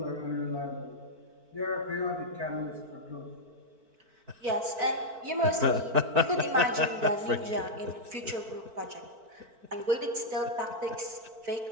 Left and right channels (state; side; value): late; left; 4.5 ms